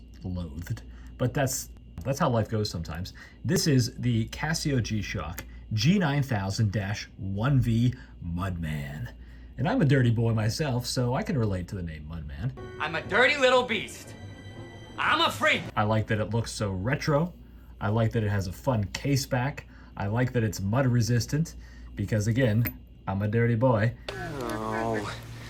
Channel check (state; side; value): identical; both; correlation 1.00